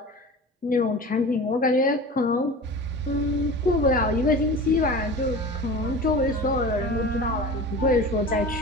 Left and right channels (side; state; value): both; normal; correlation 0.35